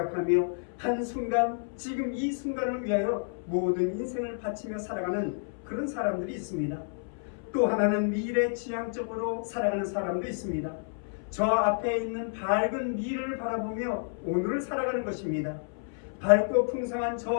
한순간, 지금 이 순간을 위하여 모든 인생을 바치며 살아가는 그런 사람들이 있습니다. 또 하나는 미래 지향적으로 살아가는 사람도 있습니다. 저 앞에 있는 밝은 미래를 바라보며 오늘을 살아가는 것입니다. 밝고 풍성한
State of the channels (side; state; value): right; silent; 58 dB below the other